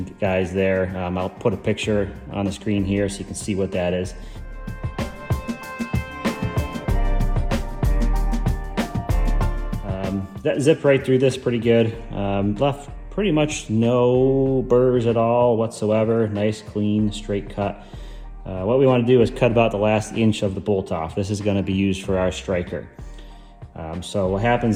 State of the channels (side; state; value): both; identical; correlation 1.00